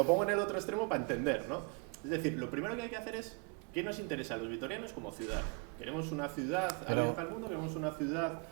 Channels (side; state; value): left; quieter; 31.3 dB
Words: pongo en el otro extremo para entender, ¿no? Es decir, lo primero que hay que hacer es qué nos interesa a los vitorianos como ciudad. ¿Queremos una ciudad abierta al mundo? ¿Queremos una ciudad...?